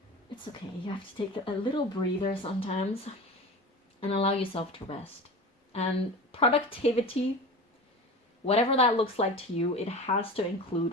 it's okay. You have to take a little breather sometimes and allow yourself to rest. And productivity, whatever that looks like to you, it has to include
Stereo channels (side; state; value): both; normal; correlation 0.32